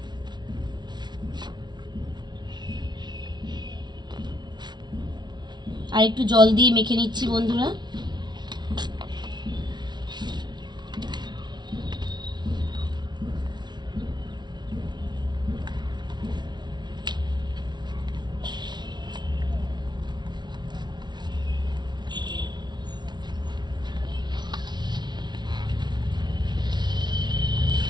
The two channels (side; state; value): left; late; 0.20 ms